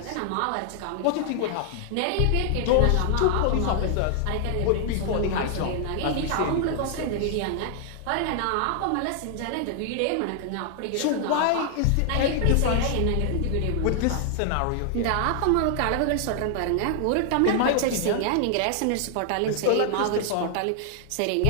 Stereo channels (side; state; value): both; different; correlation 0.00